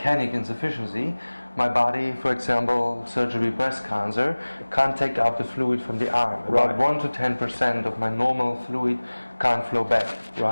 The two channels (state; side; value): inverted; both; correlation -1.00